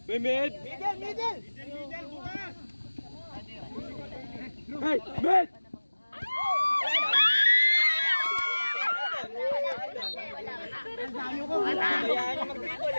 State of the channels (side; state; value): both; inverted; correlation -1.00